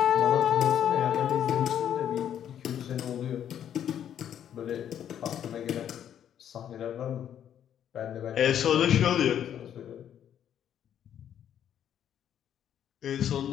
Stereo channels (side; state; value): right; quieter; 9.8 dB